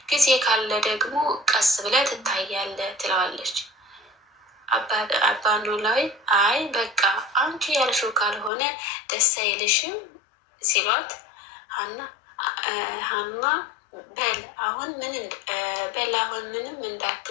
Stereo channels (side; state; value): right; drops out; at 8.5 s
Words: ጊዜ ካለ ደግሞ ቀስ ብለህ ትታያለህ ትለዋለች። አባ ኖላዊ አይ በቃ አንቺ ያልሽው ካልሆነ ደስ አይልሽም ሲሏት ሀና በል አሁን ምንም